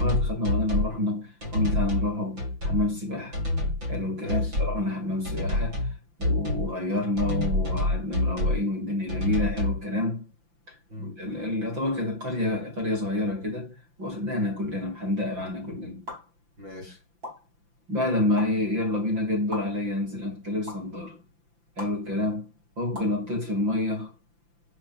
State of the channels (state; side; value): late; left; 5.9 ms